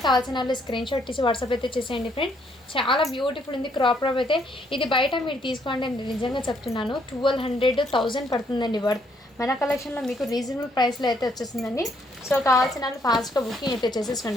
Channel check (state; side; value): normal; both; correlation 0.70